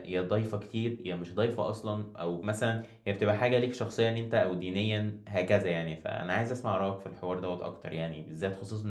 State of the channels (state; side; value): identical; both; correlation 1.00